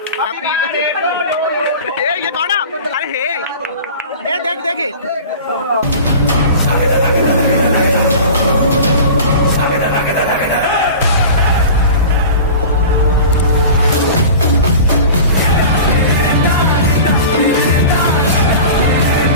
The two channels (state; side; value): inverted; both; correlation -0.37